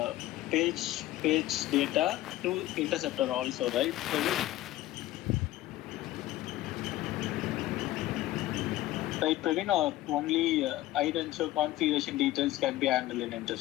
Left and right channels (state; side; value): quieter; right; 15.8 dB